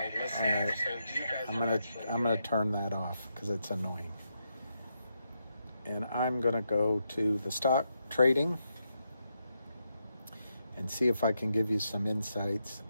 listener. Right. So you guys I'm gonna turn that off because it's annoying. And I'm gonna go to the stock trading. and see if I can give you some insights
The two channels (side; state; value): both; inverted; correlation -0.82